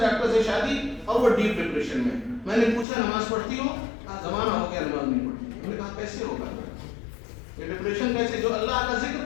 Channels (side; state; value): right; drops out; at 2.9 s